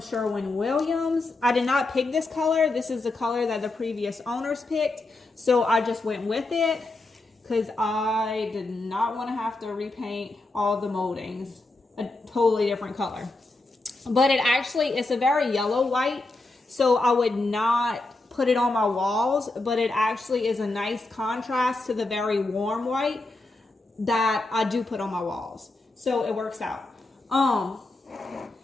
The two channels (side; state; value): right; quieter; 3.0 dB